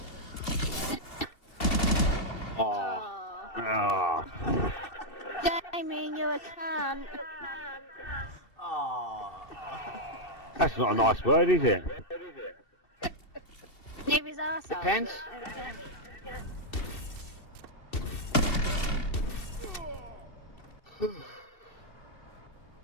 Oh, Oh. Jamie, you're a cunt. Aww. That's not a nice word, is it? Leave his arsehole. Depends.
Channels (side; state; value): right; late; 2.7 ms